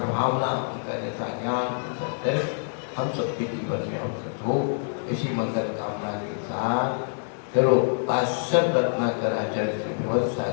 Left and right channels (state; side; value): silent; right; 61 dB below the other